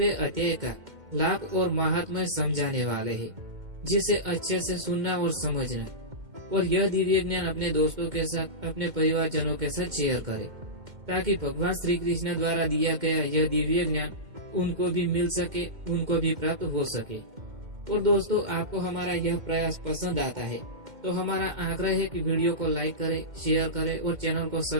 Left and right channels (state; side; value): late; left; 2.1 ms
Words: अध्याय का लाभ और महात्म्य समझाने वाले हैं, जिसे अच्छे से सुनना और समझना, और यह दिव्य ज्ञान अपने दोस्तों के साथ, अपने परिवारजनों के साथ शेयर करें, ताकि भगवान श्री कृष्ण द्वारा दिया गया यह दिव्य ज्ञान उनको भी मिल सके, उनको भी प्राप्त हो सके। और दोस्तों, आपको हमारा यह प्रयास पसंद आता है तो हमारा आग्रह है कि वीडियो को लाइक करें, शेयर करें और चैनल को